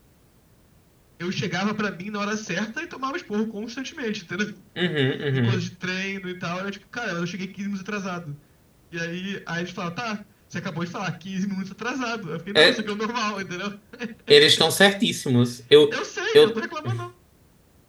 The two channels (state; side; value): identical; both; correlation 1.00